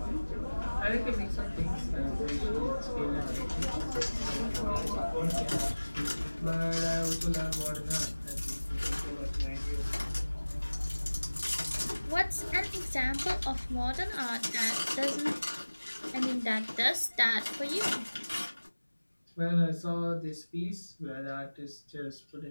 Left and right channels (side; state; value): both; inverted; correlation -1.00